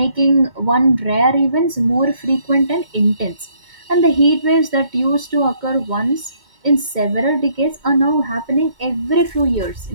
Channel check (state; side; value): late; left; 2.1 ms